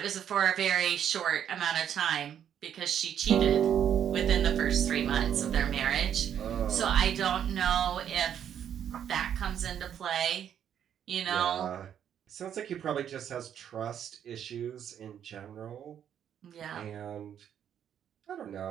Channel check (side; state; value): left; quieter; 9.3 dB